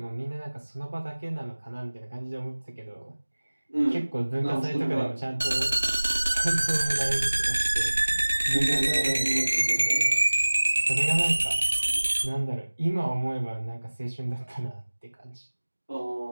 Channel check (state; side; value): inverted; both; correlation -1.00